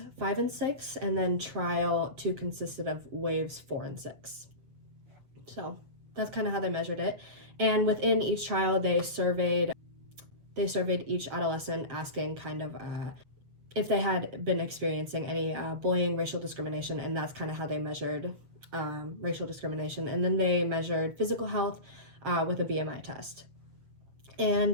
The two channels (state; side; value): late; left; 7.3 ms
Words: 5 and 6, and then trial 2 consisted of waves 4 and 6. So that's kind of how they measured it. And within each trial, they surveyed each adolescent, asking if they had been experiencing any bullying, racial discrimination, and that's kind of how they measured racial discrimination. And then they measured physical health with a BMI test. And